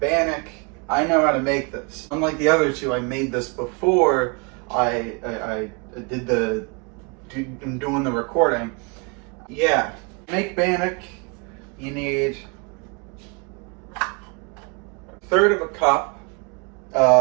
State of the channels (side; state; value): left; quieter; 32.8 dB